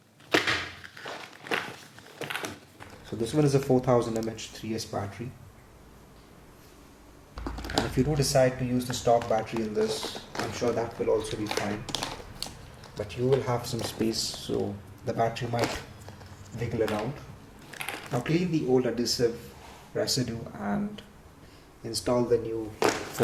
So this one is a 4000 mAh 3S battery. And if you do decide to use the stock battery in this, I'm sure that will also be fine. But you will have some space, so the battery might wiggle around. Now clean the old adhesive residue and install the new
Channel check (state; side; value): identical; both; correlation 1.00